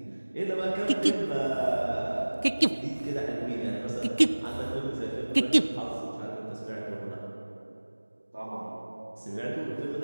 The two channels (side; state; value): both; inverted; correlation -1.00